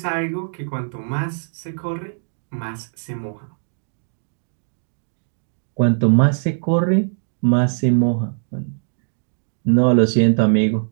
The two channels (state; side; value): silent; left; digital silence